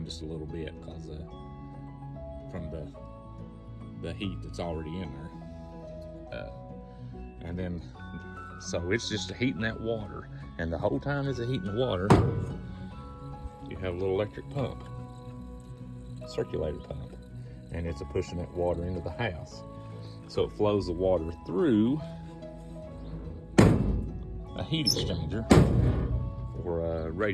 just a little bit because from the heat that's already in there. And then, so it's just heating that water. And the whole time it's heating the water, you have a little electric pump, circulator pump, and it's pushing that water into the house. So it flows the water through a heat exchanger, or a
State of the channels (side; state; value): both; identical; correlation 1.00